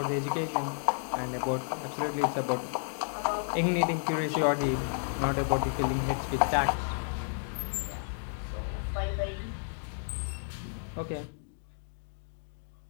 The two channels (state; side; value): silent; right; digital silence